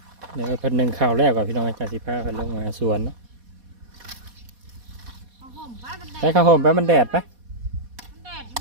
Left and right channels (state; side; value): late; left; 4.2 ms